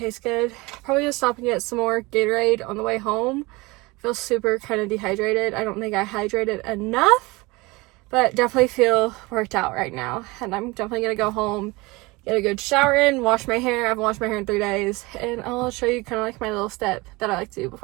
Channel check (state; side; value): quieter; left; 23.6 dB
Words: good. Probably gonna stop and get some more Gatorade on the way home. I feel super kind of dehydrated. I don't think I hydrated enough, but definitely feel worked out right now. And I'm definitely gonna go home, get a good shower in, wash my hair. I haven't washed my hair in 3 days, and I'll show you kind of my little step that I like to do